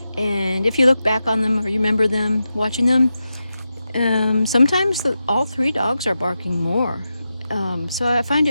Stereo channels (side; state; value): both; inverted; correlation -0.90